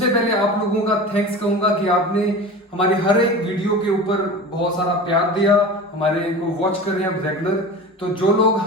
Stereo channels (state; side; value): normal; both; correlation 0.33